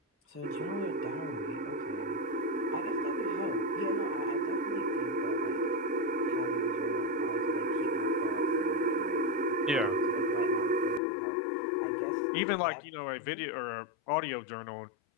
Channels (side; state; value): right; drops out; at 11.0 s